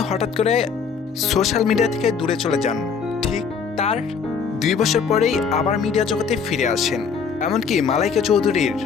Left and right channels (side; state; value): right; quieter; 6.0 dB